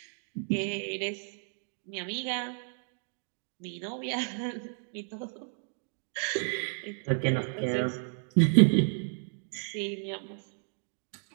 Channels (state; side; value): silent; left; 56 dB below the other